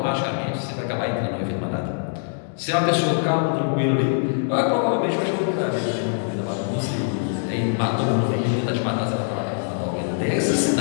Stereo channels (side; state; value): right; silent; digital silence